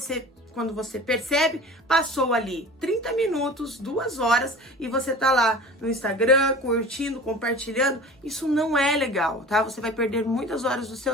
você percebe, passou ali 30 minutos, 2 horas, e você tá lá no Instagram, curtindo, compartilhando. Isso não é legal, tá? Você vai perder muitas horas do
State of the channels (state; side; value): normal; both; correlation 0.39